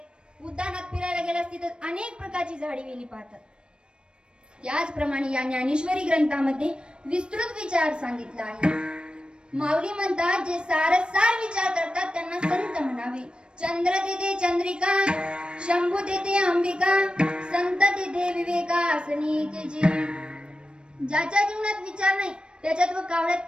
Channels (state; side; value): late; left; 0.054 ms